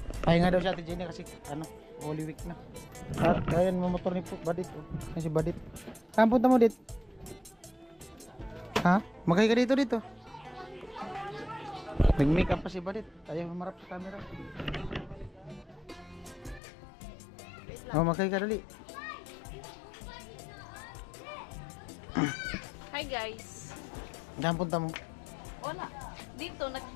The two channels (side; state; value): right; drops out; at 16.6 s